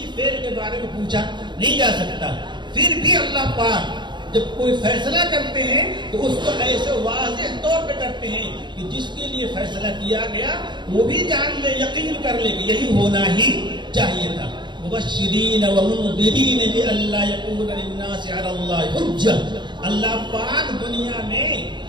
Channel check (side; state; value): left; late; 0.22 ms